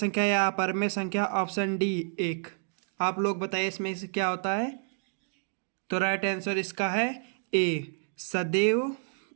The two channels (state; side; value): silent; left; digital silence